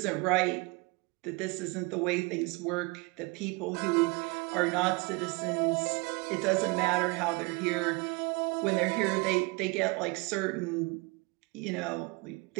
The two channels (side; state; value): left; quieter; 26.7 dB